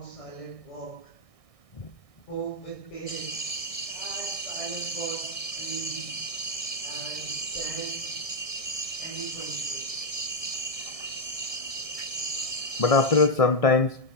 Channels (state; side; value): late; right; 1.6 ms